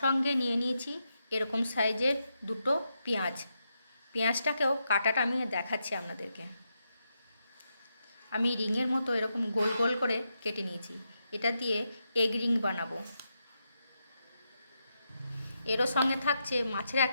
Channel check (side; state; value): both; inverted; correlation -0.84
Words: সঙ্গে নিয়ে নিয়েছি এরকম সাইজের দুটো পেঁয়াজ। পেঁয়াজটাকেও কাটাটা আমি দেখাচ্ছি আপনাদেরকে। আমি রিংয়ের মতো এরকম গোল গোল করে কেটে নিয়েছি। এটা দিয়ে এগ রিং বানাবো। এরও সঙ্গে থাকছে মাছের